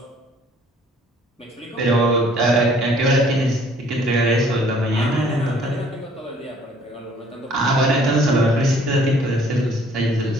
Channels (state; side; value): normal; both; correlation 0.58